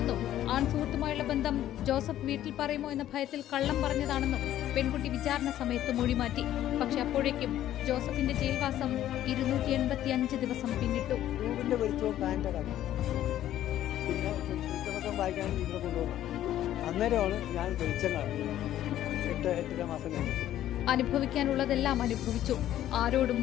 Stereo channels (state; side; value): quieter; right; 12.5 dB